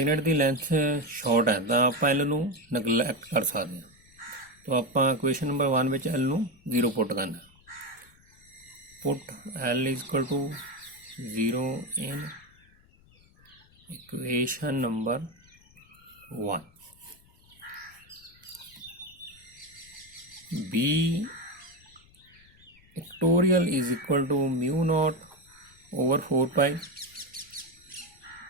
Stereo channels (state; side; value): noise; left; rumble, 28 dB below the sound